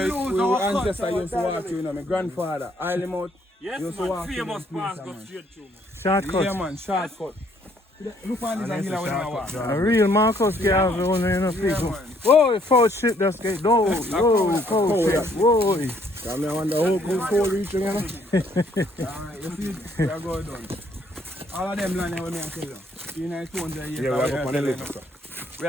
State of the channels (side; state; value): both; normal; correlation 0.66